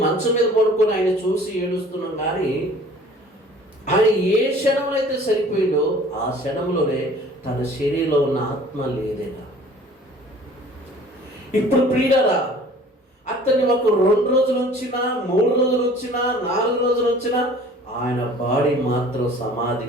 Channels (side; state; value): both; normal; correlation 0.49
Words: మంచం మీద పడుకొని ఆయన చూసి ఏడుస్తున్నాం, కానీ ఆయన ఏ క్షణంలో అయితే చనిపోయిందో ఆ క్షణంలోనే తన శరీరంలో ఉన్న ఆత్మ లేదేనా? ఇప్పుడు ప్రియులారా, అతన్ని ఒక 2 రోజులు ఉంచినా, 3 రోజులు ఉంచినా, 4 రోజులు ఉంచినా ఆయన బాడీ మాత్రం